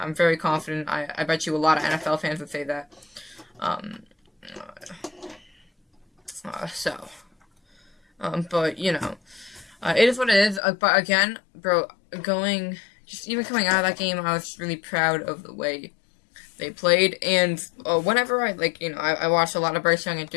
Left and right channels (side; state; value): right; drops out; at 10.6 s